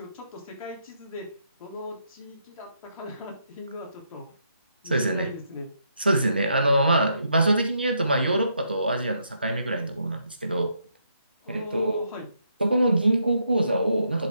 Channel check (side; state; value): both; inverted; correlation -0.76